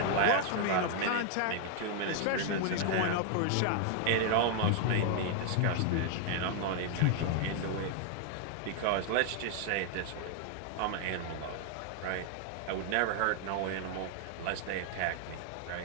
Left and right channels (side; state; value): both; different; correlation 0.00